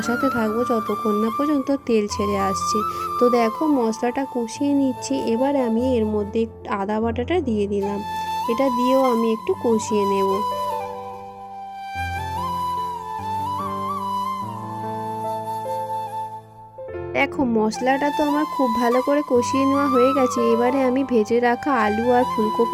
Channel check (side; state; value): both; identical; correlation 1.00